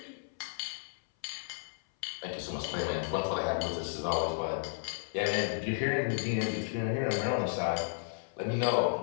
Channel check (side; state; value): right; silent; 56 dB below the other